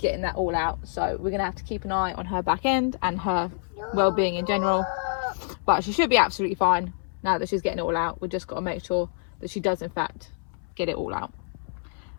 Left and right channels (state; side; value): silent; right; 60 dB below the other